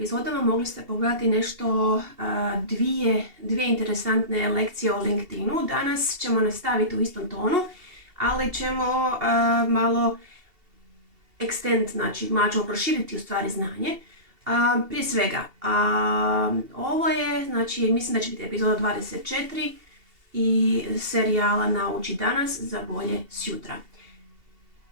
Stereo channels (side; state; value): left; late; 2.7 ms